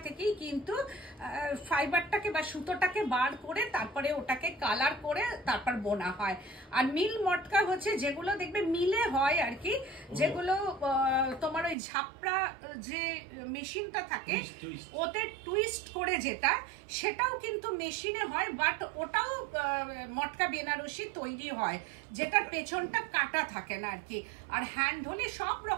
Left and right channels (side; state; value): left; drops out; at 11.8 s